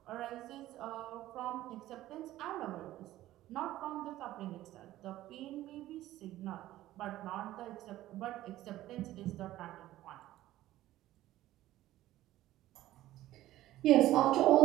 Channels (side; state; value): left; quieter; 14.9 dB